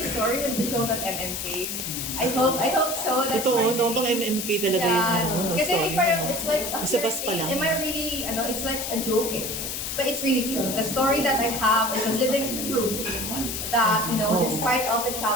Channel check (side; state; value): left; noise; hiss, 4 dB below the sound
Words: would be shown at MMK. I hope so. That's Totoo, my no? Pang dream. MMK talaga yun. No, Kasi story parang mo. it's like a Sa bus pa thing. lang. Am I really, it's like a joke eh. But it's really true. The story that I have is a living proof that, despite all the